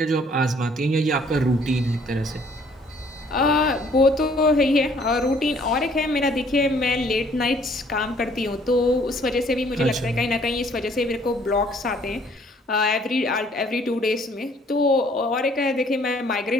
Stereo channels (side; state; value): both; normal; correlation 0.60